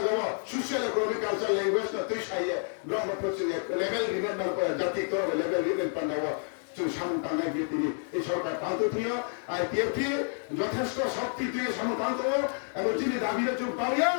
সোশ্যাল ইকোনমিক কালচার ল্যাঙ্গুয়েজ না তুই সাইয়ে ব্রহ্মপুত্র লেভেল রিমেম্বার করে জাতি করবে লেভেল রিমেম্বার পাল্লা সামনে গিয়ে তিনি এই সরকার টান্ত থিও আর টিএফটি যথেষ্ট শক্তি তুই সমতান্ত এবং যিনি দাবির চুপ পাবিয়া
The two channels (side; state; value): right; silent; 57 dB below the other